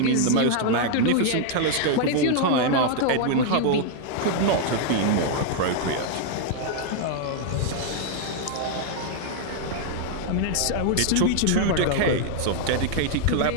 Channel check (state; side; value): different; both; correlation 0.00